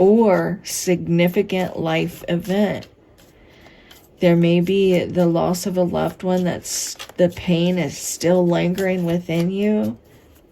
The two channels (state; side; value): identical; both; correlation 1.00